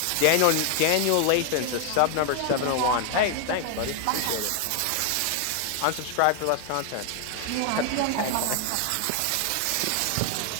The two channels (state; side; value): different; both; correlation 0.00